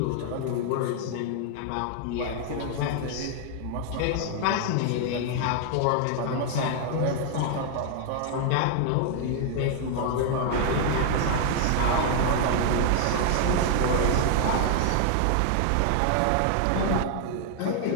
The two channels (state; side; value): different; both; correlation 0.00